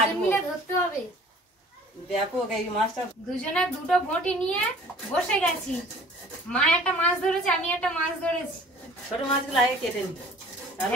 মিলে ধরতে হবে। ব্যাপক এই মাছটা। দুজনে দুটো বটি নিয়ে বসে গেছি। মা একটা মাছ ধরেছে, আমি একটা মাছ ধরেছি। ছোট মাছগুলো আগে কেটে নি, তাহলে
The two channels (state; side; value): normal; both; correlation 0.49